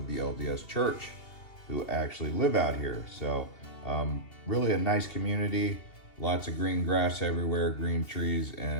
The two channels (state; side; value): late; right; 2.8 ms